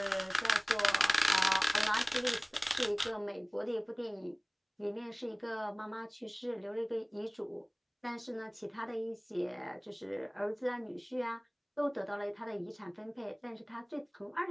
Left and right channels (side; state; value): both; identical; correlation 1.00